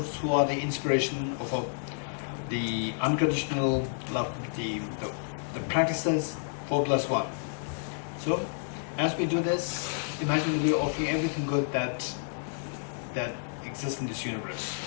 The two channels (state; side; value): silent; right; digital silence